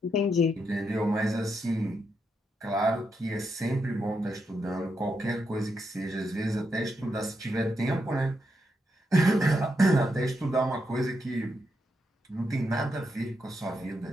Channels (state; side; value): normal; both; correlation 0.82